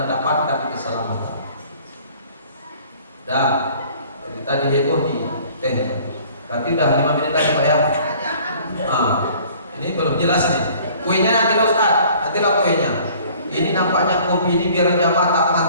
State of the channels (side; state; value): both; inverted; correlation -0.52